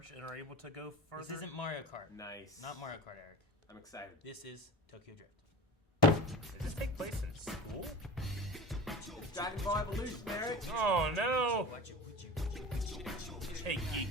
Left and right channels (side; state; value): both; normal; correlation 0.33